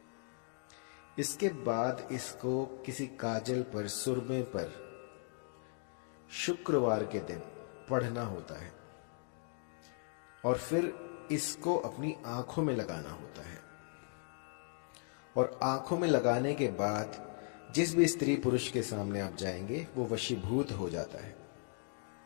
इसके बाद इसको किसी काजल पर, सुरमे पर शुक्रवार के दिन पढ़ना होता है और फिर इसको अपनी आंखों में लगाना होता है। और आंखों में लगाने के बाद जिस भी स्त्री पुरुष के सामने आप जाएंगे वो वशीभूत हो जाता है।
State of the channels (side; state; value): right; silent; 53 dB below the other